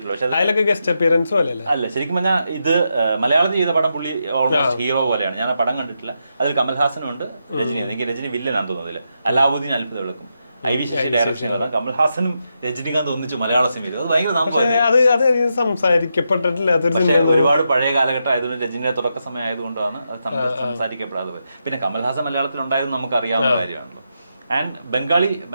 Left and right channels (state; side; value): inverted; both; correlation -0.84